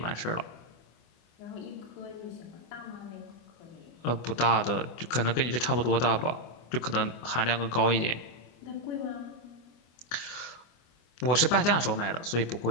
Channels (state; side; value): late; right; 25 ms